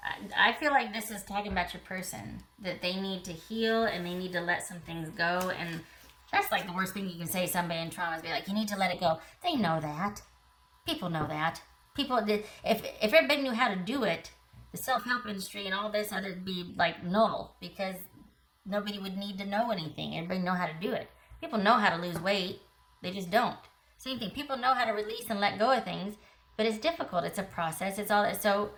I feel like this is talking about your person, that they need to heal and they need to let some things go. And that's like the worst thing you can say to somebody in trauma is be like, you need to let it go. They know that. People know that. People did. If everybody knew how to do it, the self-help industry and all this other be like null, because nobody would need to know anything. Everybody know how to do it. People know how to lose weight. They just don't. Same thing. People know how to release and let go of things, but it's difficult. It's a process. It's all that. So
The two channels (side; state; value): both; identical; correlation 1.00